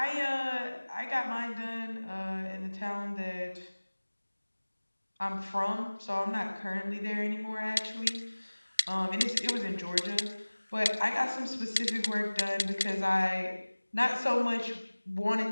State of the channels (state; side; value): inverted; both; correlation -1.00